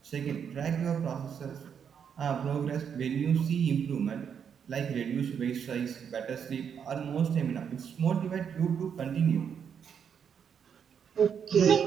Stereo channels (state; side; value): quieter; left; 7.5 dB